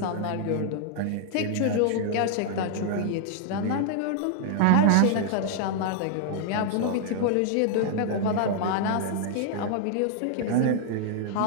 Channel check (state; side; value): different; both; correlation -0.01